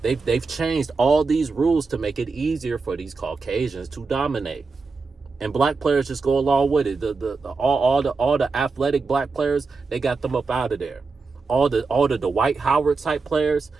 They've changed all these rules to make it easier for these Caucasians to dominate, and black players just go along with it. All the athletic black players, they got them up out of there. All the Dwight Howard type players,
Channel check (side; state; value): left; quieter; 4.4 dB